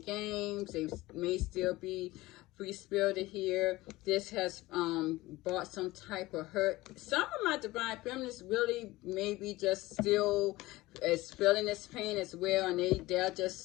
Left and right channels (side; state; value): right; quieter; 18.9 dB